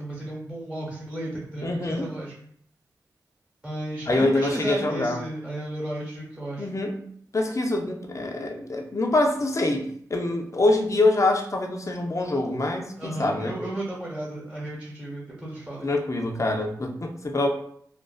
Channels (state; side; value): normal; both; correlation 0.79